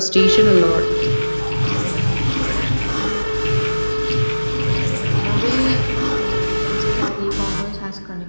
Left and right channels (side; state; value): both; inverted; correlation -1.00